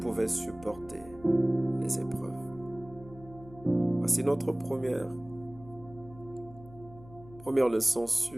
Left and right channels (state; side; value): noise; left; hum, 20 dB below the sound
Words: supporter les épreuves. Voici notre première leçon